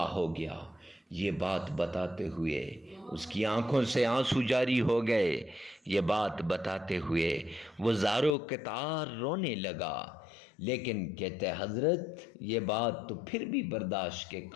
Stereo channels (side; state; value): right; drops out; at 8.3 s